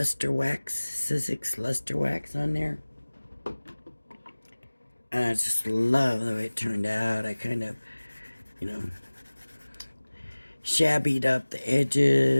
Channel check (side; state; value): both; inverted; correlation -1.00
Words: wax, Sizzix luster wax on there. And I just love the way it turned out. I kind of, you know, shabbied up the